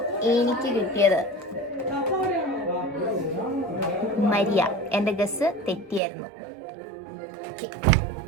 എനിക്ക് കിട്ടിയത് മരിയ. എന്റെ ഗസ് തെറ്റിയായിരുന്നു.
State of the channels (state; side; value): drops out; left; at 6.0 s